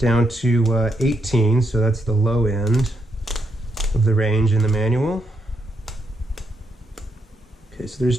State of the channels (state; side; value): normal; both; correlation 0.79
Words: to 18, so that's the low end of the range in the manual. Okay, so there's